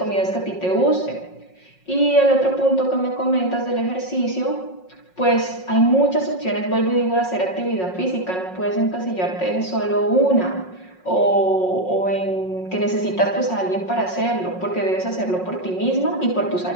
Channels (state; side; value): late; right; 5.5 ms